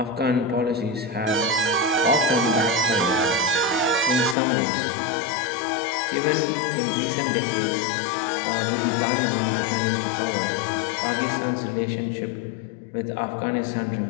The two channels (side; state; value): right; drops out; at 4.4 s